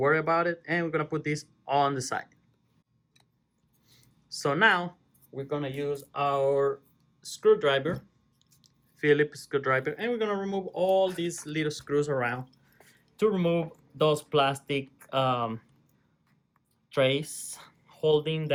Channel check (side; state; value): both; identical; correlation 1.00